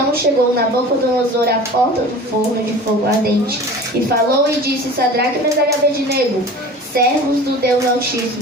chegou Nabucodonosor à porta do forno de fogo ardente, e falou e disse: Sadraque, Mesaque e Abednego, servos do Deus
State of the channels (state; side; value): normal; both; correlation 0.39